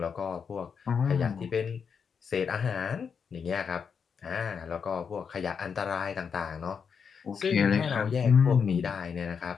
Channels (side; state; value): right; quieter; 6.4 dB